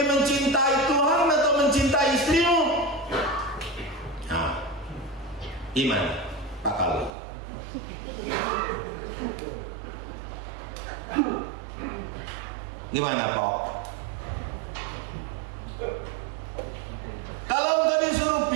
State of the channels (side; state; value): left; drops out; at 7.1 s